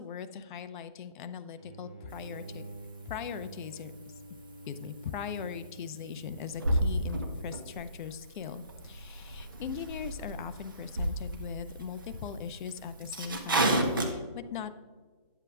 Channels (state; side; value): inverted; both; correlation -0.47